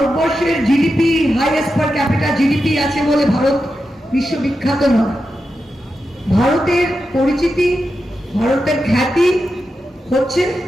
জিডিপি হাইয়েস্ট পার ক্যাপিটা জিডিপি আছে বলে ভারত বিশ্ববিখ্যাত নয়। ভারতের পরিচিতি, ভারতের খ্যাতি হচ্ছে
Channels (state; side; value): normal; both; correlation 0.89